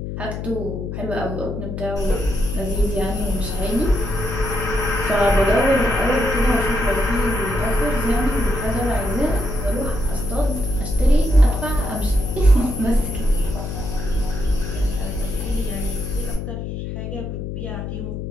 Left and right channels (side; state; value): left; noise; hum, 6 dB below the sound